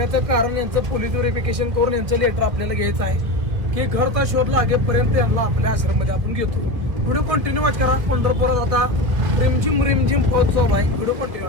कारण यांचं पोलीस व्हेरिफिकेशन करून यांचं लेटर आपल्याला घ्यायचं आहे की घरचा शोध लागेपर्यंत यांना आपल्या आश्रममध्ये आपण घेतो व्हिडिओ कंटिन्यू वॉच करा पंढरपुरात आता रिमझिम पाऊस चालू आहे व्हिडिओ कंटिन्यू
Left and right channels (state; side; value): late; left; 1.9 ms